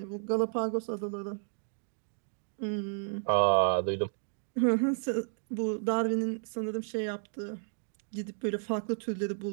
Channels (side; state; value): left; silent; digital silence